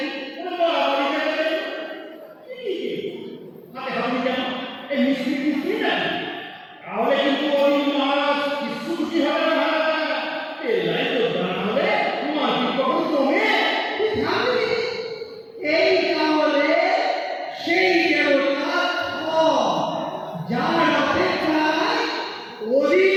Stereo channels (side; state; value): both; identical; correlation 1.00